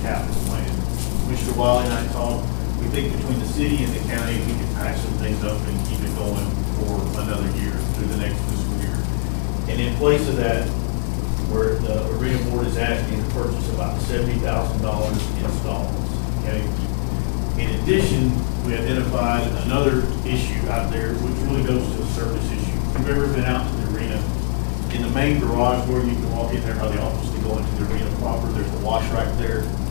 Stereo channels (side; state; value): right; silent; digital silence